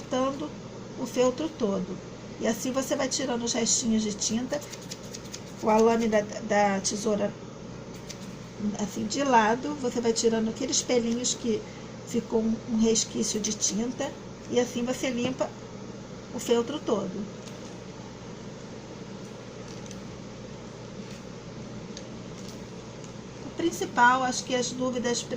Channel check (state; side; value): identical; both; correlation 1.00